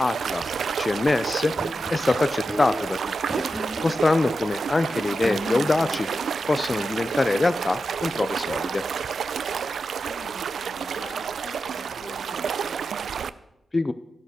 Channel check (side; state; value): both; normal; correlation 0.89